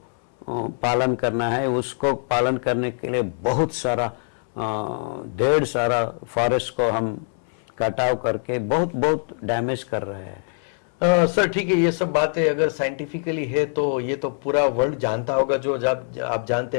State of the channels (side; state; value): right; silent; 63 dB below the other